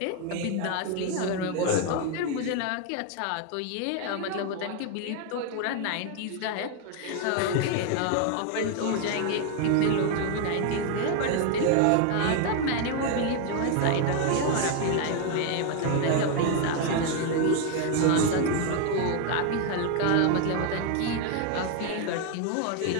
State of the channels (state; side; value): different; both; correlation 0.01